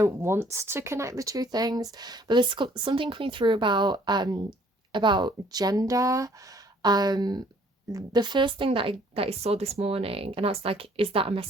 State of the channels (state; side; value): normal; both; correlation 0.60